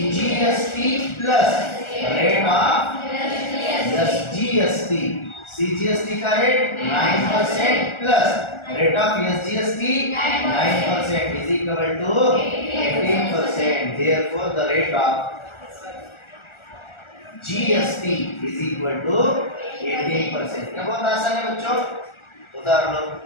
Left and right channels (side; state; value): right; late; 1.4 ms